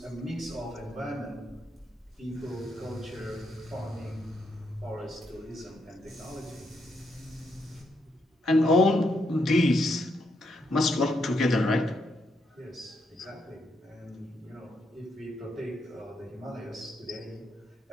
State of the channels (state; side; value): normal; both; correlation 0.79